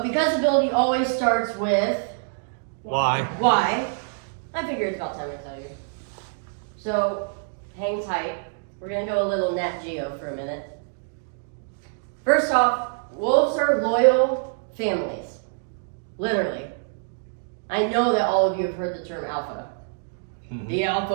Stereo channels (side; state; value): left; silent; digital silence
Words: because ability always starts with Why? I figure it's about time I tell you. So hang tight. We're going to go a little Nat Geo for a minute. First off, wolves are loyal families. Literally. I know that all of you have heard the term alpha. Mm-hmm. The